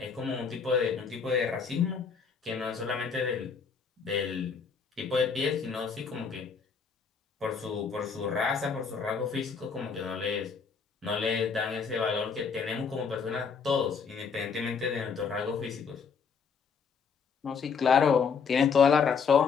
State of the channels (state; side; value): quieter; right; 5.9 dB